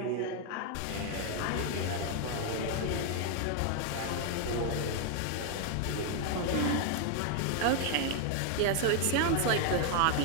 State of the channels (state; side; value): different; both; correlation 0.00